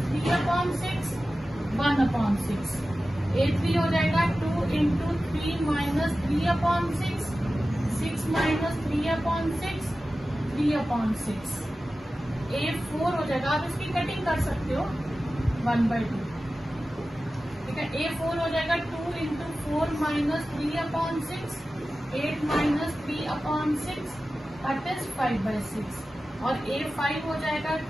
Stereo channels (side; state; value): both; normal; correlation 0.95